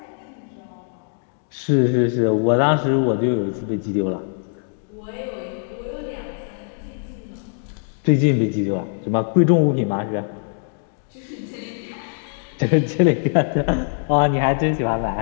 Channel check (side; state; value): right; silent; digital silence